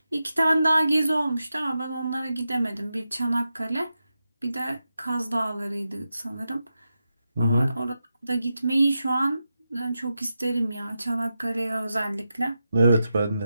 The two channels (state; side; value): inverted; both; correlation -0.89